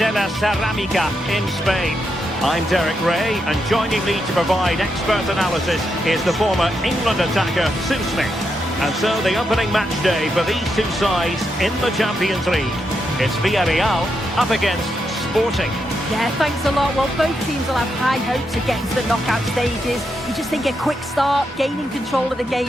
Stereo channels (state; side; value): normal; both; correlation 0.83